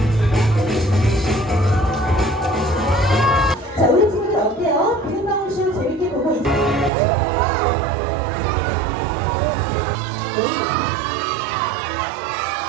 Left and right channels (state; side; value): drops out; left; at 6.9 s